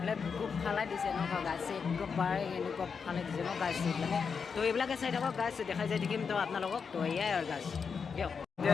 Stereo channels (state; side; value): quieter; right; 5.9 dB